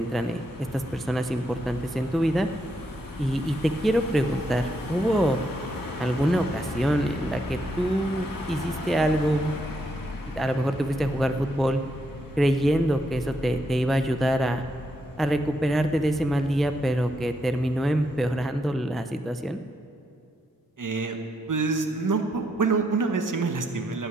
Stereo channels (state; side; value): normal; both; correlation 0.78